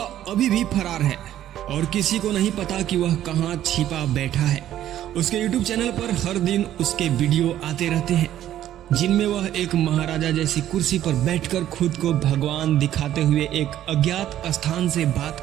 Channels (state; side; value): quieter; left; 12.1 dB